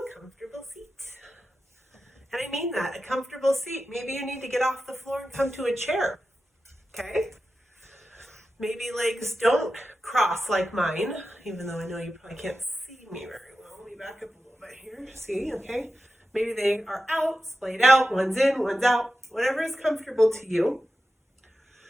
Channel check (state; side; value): normal; both; correlation 0.92